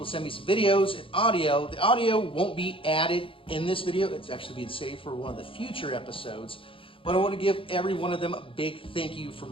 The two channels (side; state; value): right; late; 0.26 ms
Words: send me some videos and audio, the audio won't be added in this video. It's actually being saved for one of the future episodes. But I want to give every one of them a big thank you for